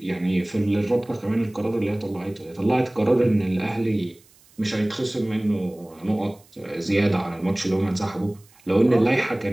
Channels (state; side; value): noise; right; hiss, 29 dB below the sound